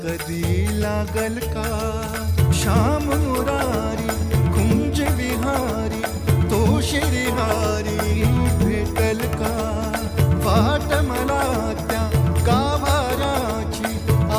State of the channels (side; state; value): both; identical; correlation 1.00